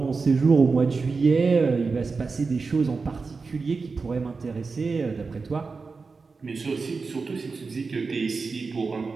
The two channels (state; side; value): quieter; left; 4.5 dB